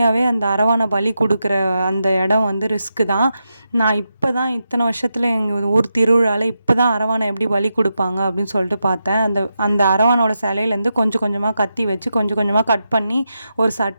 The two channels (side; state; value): both; inverted; correlation -0.87